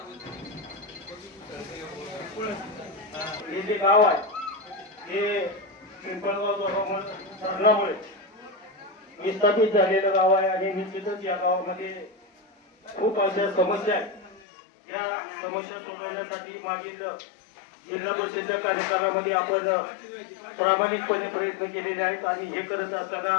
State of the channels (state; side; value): drops out; right; at 14.4 s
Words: हे जे गाव आहे हे पिंपळगाव धरणामुळे विस्थापित झालेलं गाव आहे आणि निश्चितच या गावामध्ये खूप अशा समस्या आहेत। या समस्या सोडवण्यासाठी मागील जिल्हा परिषदेच्या कार्यकालामध्ये आपण प्रामाणिकपणे प्रयत्न केलेले आहेत आणि हे करत असताना